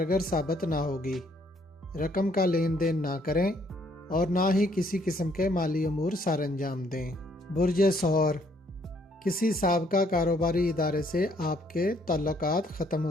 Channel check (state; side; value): normal; both; correlation 0.66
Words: साबित ना होगी। रकम का लेन देन ना करें और ना ही किसी किस्म के माली अमूर सर अंजाम दें। बुर्जे सहर, किसी साबका कारोबारी इदारे से आपके ताल्लुकात ख़त्म